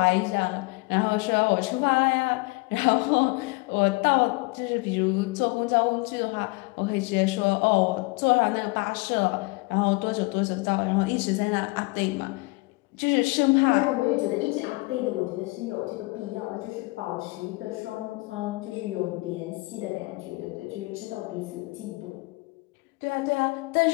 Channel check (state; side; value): quieter; right; 25.4 dB